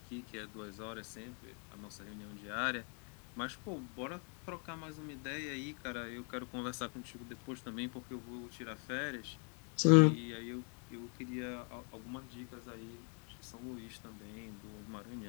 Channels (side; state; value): right; quieter; 39.9 dB